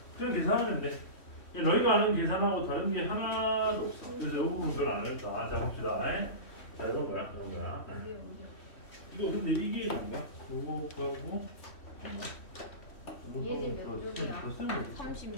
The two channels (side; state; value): right; late; 3.1 ms